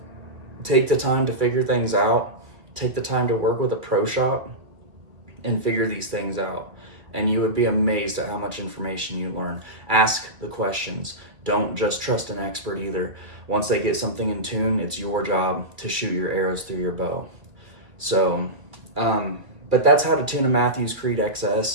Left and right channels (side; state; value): left; late; 2.2 ms